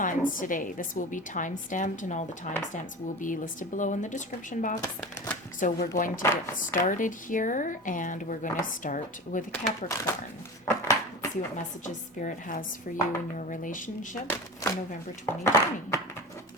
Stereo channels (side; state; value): both; normal; correlation 0.31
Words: today. This will be time-stamped, and all the timestamps will be listed below in the description box. So we're going to get started here, and we're going to start with Capricorn. Let's see what messages Spirit has for you in your relationship for November 2020.